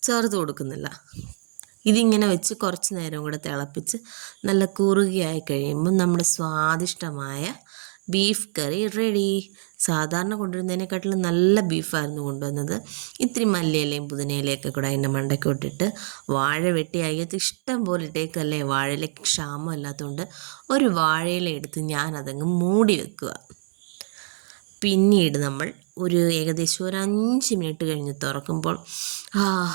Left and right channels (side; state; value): left; silent; 58 dB below the other